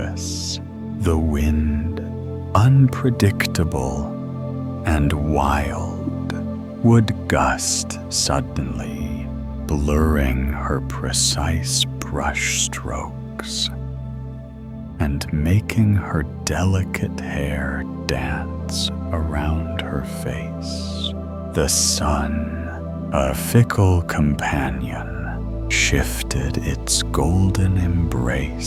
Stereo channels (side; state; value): both; identical; correlation 1.00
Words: The wind, unpredictable and wild, would gust suddenly, blurring her precise brush strokes and making her delicate hair dance around her face. The sun, a fickle companion, shifted its golden